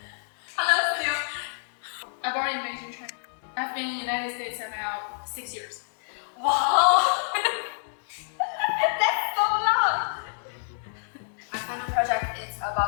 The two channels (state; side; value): silent; right; digital silence